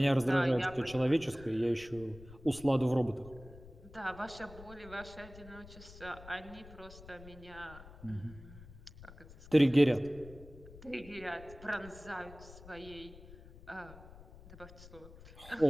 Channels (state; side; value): noise; left; rumble, 18 dB below the sound